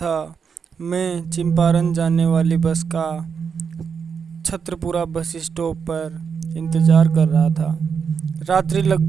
मैं चंपारण जाने वाली बस का छत्रपुरा बस स्टॉप पर इंतज़ार कर रहा था। रात्रि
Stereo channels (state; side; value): quieter; left; 6.4 dB